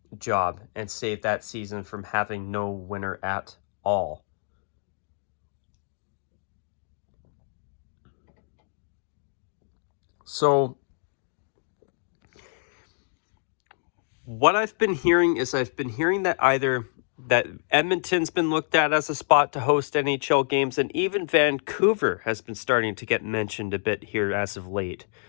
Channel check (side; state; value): right; silent; digital silence